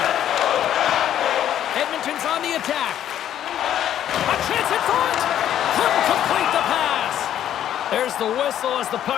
Edmonton's on the attack. A chance in front. Couldn't complete the pass. There's the whistle as the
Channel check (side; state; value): right; quieter; 10.9 dB